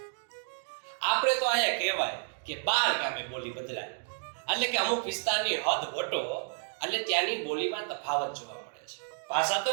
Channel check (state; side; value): silent; left; 57 dB below the other